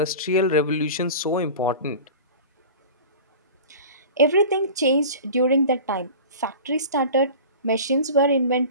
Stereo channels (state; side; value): inverted; both; correlation -0.37